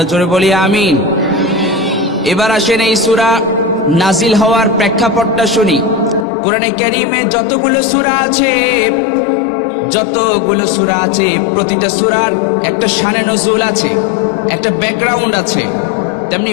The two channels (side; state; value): right; drops out; at 6.2 s